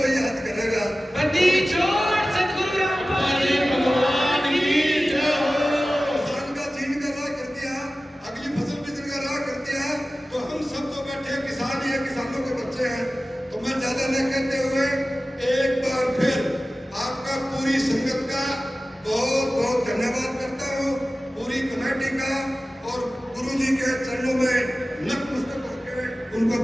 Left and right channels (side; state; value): both; normal; correlation 0.96